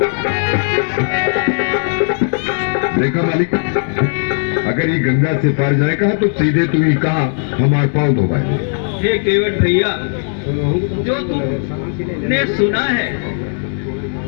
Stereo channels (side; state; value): right; silent; 69 dB below the other